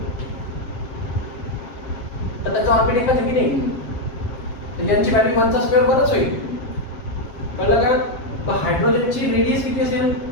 तर त्याचा ऑर्बिट एकच आहे की नाही, तर यांची व्हॅल्यू 1 चा स्क्वेअर 1च होईल. कळलं का. तर हायड्रोजनची रेडियस किती असेल,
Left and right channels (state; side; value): late; right; 7.5 ms